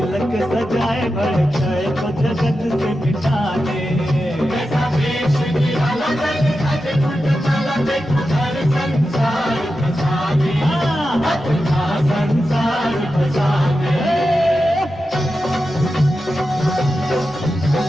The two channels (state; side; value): normal; both; correlation 0.90